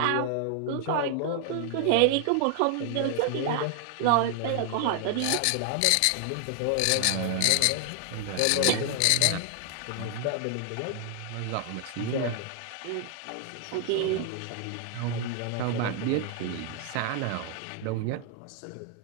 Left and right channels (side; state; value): both; different; correlation 0.00